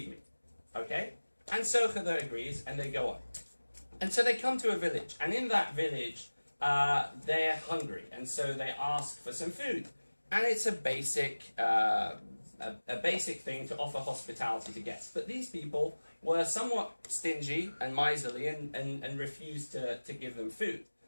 me. Okay? And so Khidr agrees, and they go on. And so they come to a village, and in that village, they're hungry, and so they ask for some food. And it's a basic thing to offer hospitality to guests. But these people were somewhat stingy and miserly and refused to give them food.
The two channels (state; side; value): inverted; both; correlation -1.00